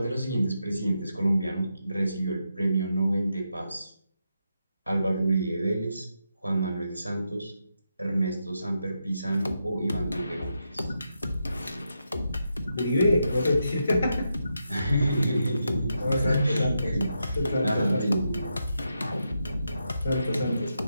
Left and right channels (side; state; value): both; inverted; correlation -0.84